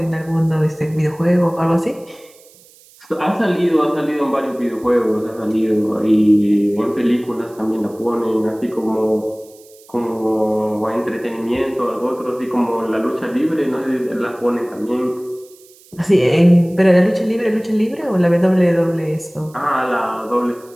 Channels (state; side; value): noise; right; hiss, 26 dB below the sound